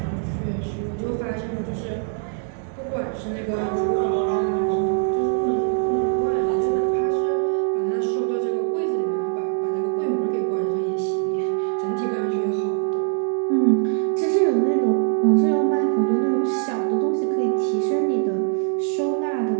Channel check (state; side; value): silent; left; 62 dB below the other